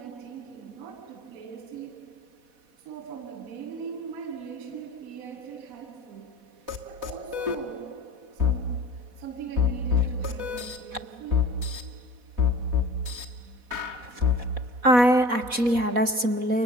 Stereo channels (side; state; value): left; late; 4.1 ms